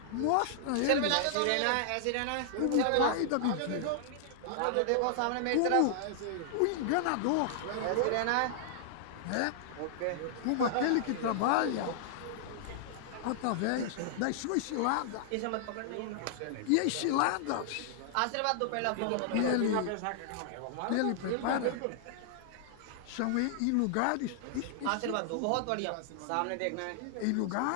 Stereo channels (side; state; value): both; different; correlation -0.01